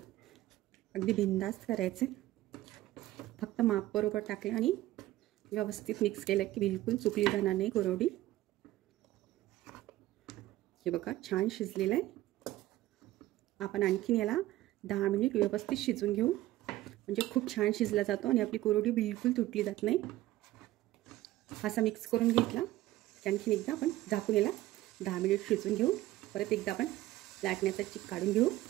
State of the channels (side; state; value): left; quieter; 15.9 dB